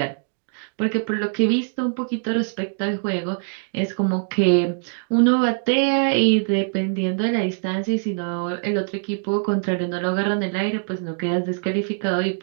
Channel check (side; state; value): left; silent; 58 dB below the other